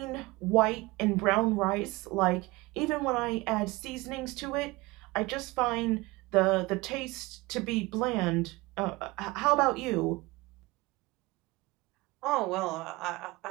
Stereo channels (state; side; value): quieter; left; 22.3 dB